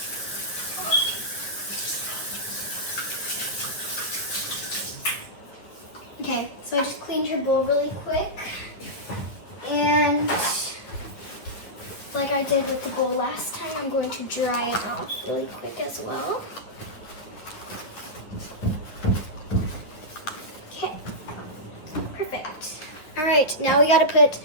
Okay, so I just cleaned her bowl really quick. And like I did with the bowl last time, I'm going to dry it off really quick as well. Okay, perfect. All right, now we gotta put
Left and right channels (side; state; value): right; late; 9.8 ms